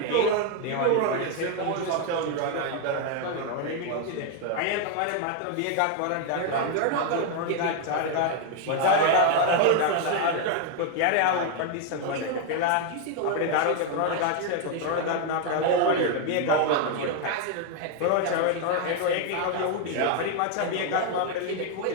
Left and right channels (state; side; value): different; both; correlation 0.01